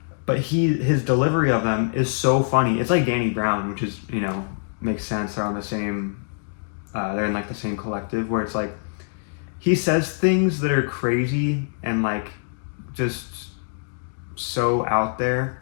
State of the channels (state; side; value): silent; right; digital silence